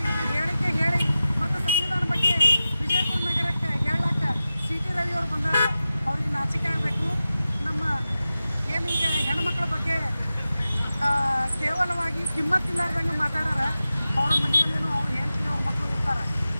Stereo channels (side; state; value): both; inverted; correlation -0.94